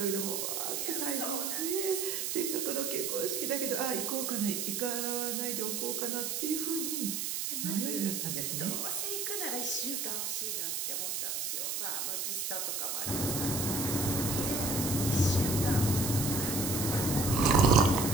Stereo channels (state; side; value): noise; right; hiss, 1 dB below the sound